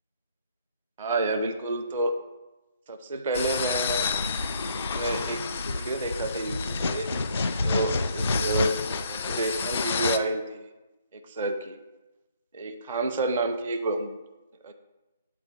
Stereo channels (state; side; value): inverted; both; correlation -0.64